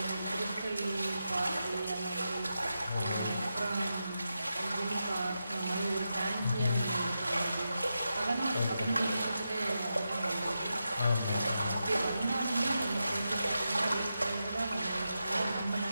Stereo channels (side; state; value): both; inverted; correlation -0.88